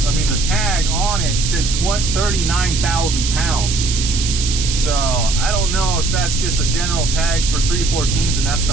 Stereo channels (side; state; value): right; noise; hiss, 4 dB below the sound